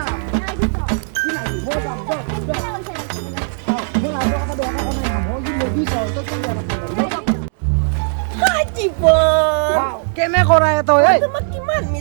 নাই দিবি কি নাই মই যাম মই ৰাইজৰ কথা বেয়া কথা নাই মই কি নদী যাওঁ তই কি বেয়া কথা জীৱন কেনে কৰাই তই এই তোমাক কিমান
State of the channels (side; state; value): left; silent; digital silence